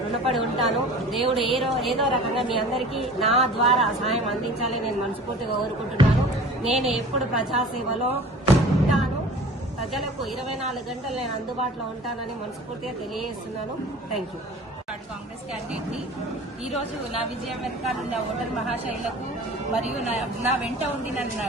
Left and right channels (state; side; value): normal; both; correlation 0.42